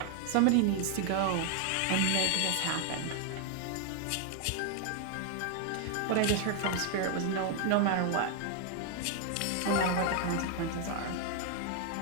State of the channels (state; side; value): different; both; correlation 0.00